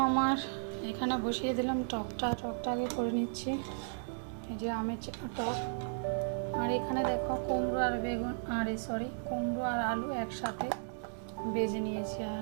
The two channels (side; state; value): left; silent; digital silence